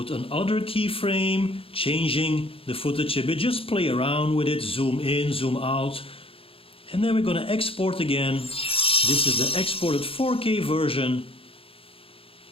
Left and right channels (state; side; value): late; right; 0.27 ms